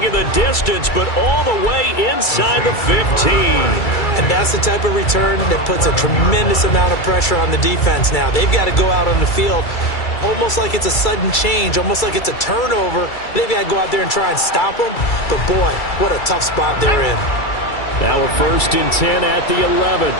it the distance, but all the way inside the 15. And that's the type of return that puts a tremendous amount of pressure on the defense now. They've got to go out on the field almost like it's a sudden change, almost like it's a turnover. They've got to go out there and try and stop them. But, boy, what a tough spot they're in. Now a 1st and 10 at the 11.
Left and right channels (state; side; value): late; right; 2.3 ms